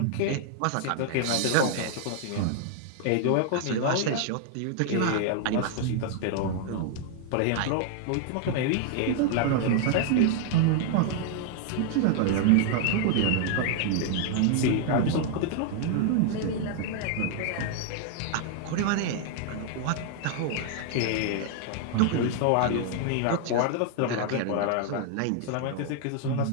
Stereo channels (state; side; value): different; both; correlation 0.00